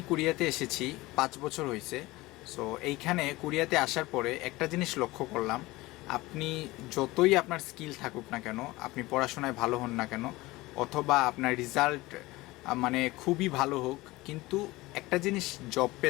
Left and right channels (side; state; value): right; quieter; 20.2 dB